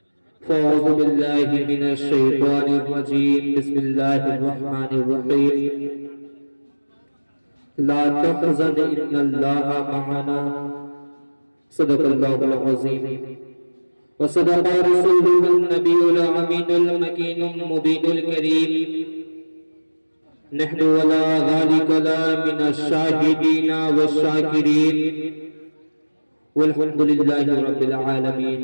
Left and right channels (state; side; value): inverted; both; correlation -1.00